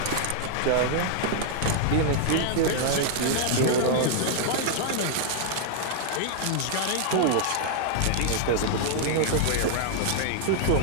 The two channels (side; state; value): both; different; correlation -0.01